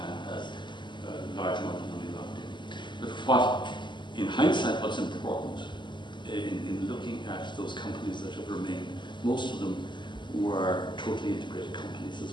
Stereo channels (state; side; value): late; right; 0.22 ms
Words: has a large amount of money locked in. But in hindsight, what's important in looking at those companies that have remained, most of them were totally integrated companies, as